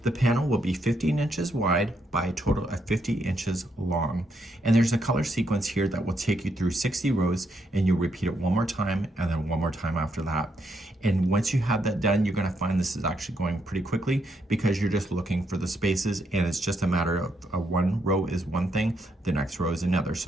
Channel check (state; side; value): normal; both; correlation 0.77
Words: The panel will be 15 inches wide by a total of 50 inches long. And there's a color sequence here that will take you through 60 rows, and you'll repeat it one more time and then one more time after that. And once you have that done, you're going to find this is actually going pretty quickly because you're just looking for the spaces, and it's just a matter of one row is one thing, the next row is another.